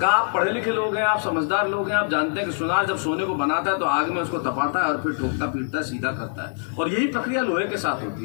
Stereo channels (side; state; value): right; silent; digital silence